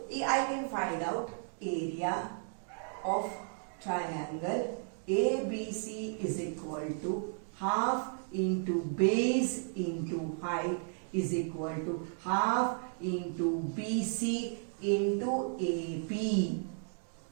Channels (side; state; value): left; silent; 55 dB below the other